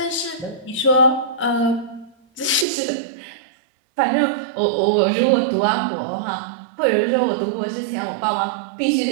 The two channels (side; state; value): left; drops out; at 2.7 s